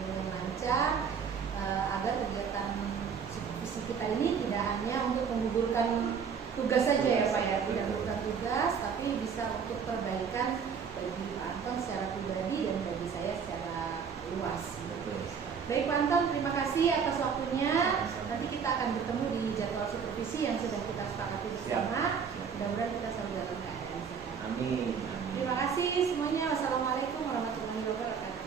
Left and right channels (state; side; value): quieter; left; 6.6 dB